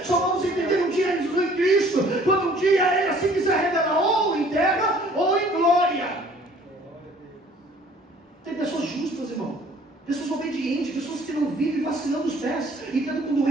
Só vamos entender um dia em Cristo, quando um dia Ele assim quiser revelar, ou em terra ou em glória. Tem pessoas justas, irmão. Pessoas obedientes, pessoas que não vivem vacilando os pés e tendo com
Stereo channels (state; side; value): normal; both; correlation 0.55